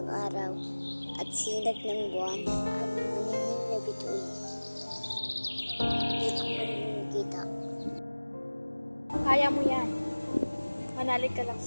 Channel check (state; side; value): inverted; both; correlation -1.00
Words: araw at sinag ng buwan at maningning na bituin. Hindi ko makikita. Kaya mo yan. Manalig ka lang